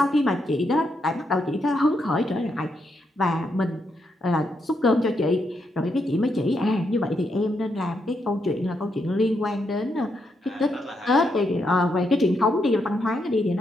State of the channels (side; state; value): both; normal; correlation 0.80